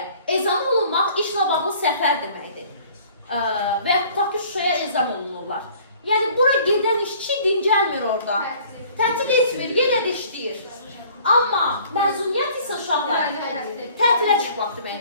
ezam olunmaq işlə bağlı səfər deməkdir. Və ya tutaq ki, Şuşaya ezam olunurlar. Yəni, bura gedən işçi dincəlmir orada. Tətil etmir, yenə də işləyir. Amma məzuniyyət isə uşaqlar tətilə çıxmaq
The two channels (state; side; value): inverted; both; correlation -0.53